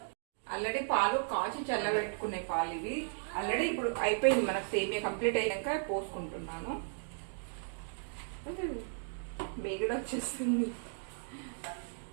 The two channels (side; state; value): left; silent; digital silence